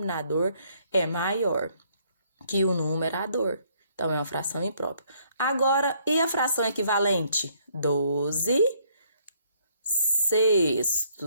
é maior que o numerador. Então, é uma fração imprópria. Agora, e a fração equivalente?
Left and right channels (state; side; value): inverted; both; correlation -0.67